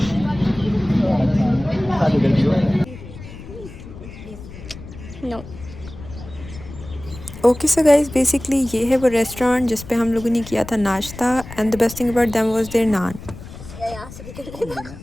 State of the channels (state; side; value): noise; left; rumble, 15 dB below the sound